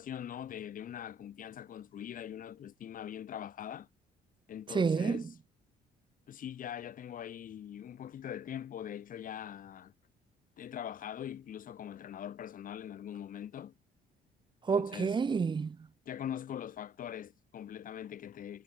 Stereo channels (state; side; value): normal; both; correlation 0.61